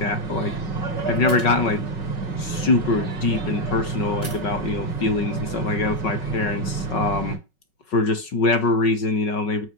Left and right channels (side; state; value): right; late; 5.4 ms